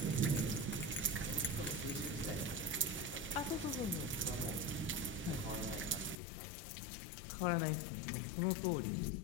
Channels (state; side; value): drops out; right; at 6.2 s